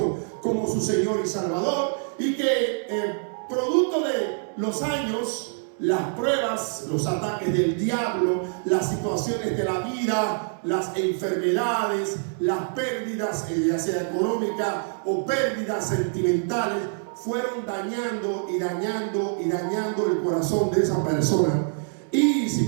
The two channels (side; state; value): left; silent; 61 dB below the other